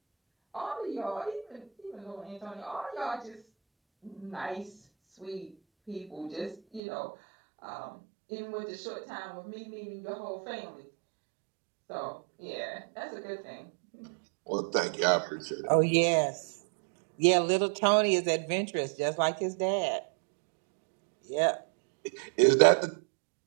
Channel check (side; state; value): left; drops out; at 6.8 s